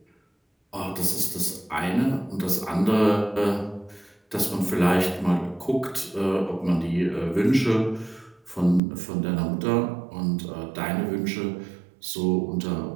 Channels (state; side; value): drops out; left; at 8.8 s